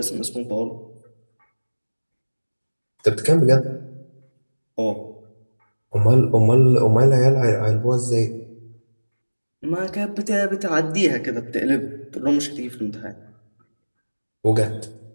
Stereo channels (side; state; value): both; inverted; correlation -1.00